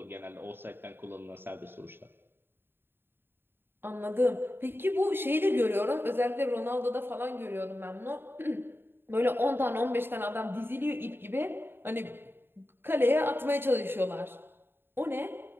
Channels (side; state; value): left; late; 0.10 ms